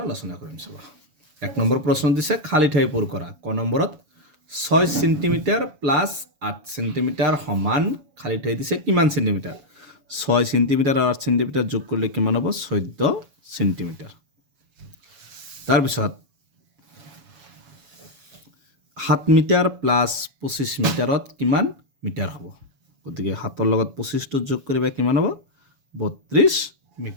আলোচনা কৰিম। চাবা 1 নম্বৰ প্ৰশ্ন দিছে খালী ঠাই পূৰ কৰা। ক নম্বৰত 6 সেন্টিমিটাৰ প্লাস 8 সেন্টিমিটাৰ সমান খালী ঠাই দিছে কিমান সেন্টিমিটাৰ? 6 সেন্টিমিটাৰ আৰু 8 সেন্টিমিটাৰ যোগ কৰিলে কিমান হ'ব? 14 সেন্টিমিটাৰ। তাৰপিছত 7 মিটাৰ প্লাস 25 মিটাৰত কিমান মিটাৰ হ'ব? গতিকে 7ৰ লগত 25টো যোগ কৰিবা কিমান হ'ব? 32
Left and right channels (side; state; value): left; late; 7.1 ms